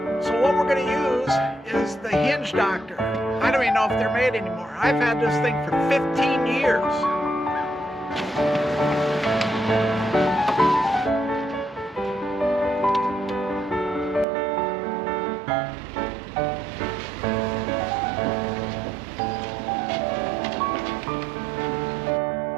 So what we're going to use is the hinge doctor. I don't even know if they're made anymore. I've had this thing for 15 years.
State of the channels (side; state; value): left; drops out; at 14.2 s